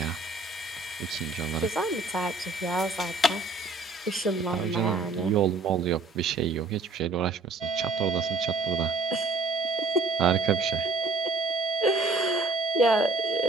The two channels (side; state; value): left; quieter; 3.6 dB